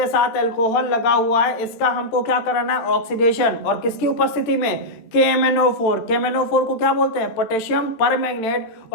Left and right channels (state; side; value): late; right; 13 ms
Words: साथ अल्कोहल लगा हुआ है, इसका हमको क्या कराना है, ऑक्सीडेशन। और किसकी उपस्थिति में, KMnO4। KMnO4 को क्या बोलते हैं, पोटेशियम परमैंगनेट